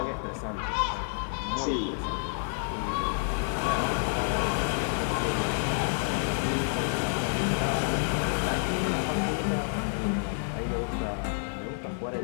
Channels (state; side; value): silent; right; digital silence